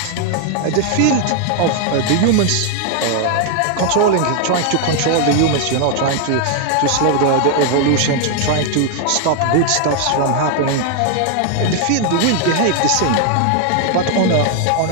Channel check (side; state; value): both; different; correlation 0.00